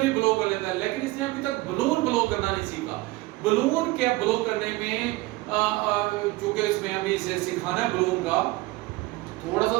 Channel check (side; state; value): left; quieter; 20.4 dB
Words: ब्लो कर लेता है, लेकिन इसने अभी तक बलून ब्लो करना नहीं सीखा। बलून क्या ब्लो करने में, चूंकि इसमें अभी इसे सिखाना है बलून का, थोड़ा सा